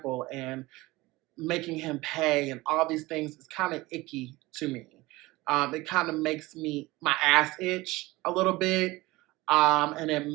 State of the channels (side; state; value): left; quieter; 20.4 dB